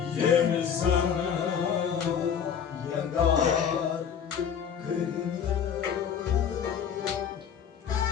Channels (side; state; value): right; quieter; 7.8 dB